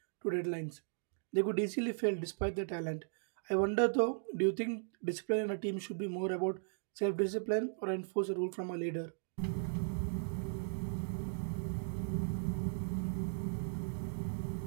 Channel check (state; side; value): silent; left; digital silence